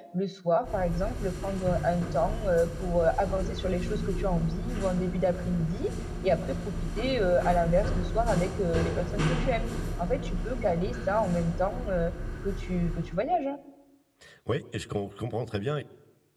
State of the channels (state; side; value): identical; both; correlation 1.00